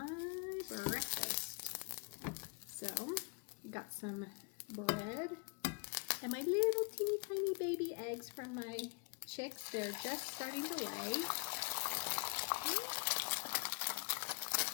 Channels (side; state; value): right; quieter; 30.1 dB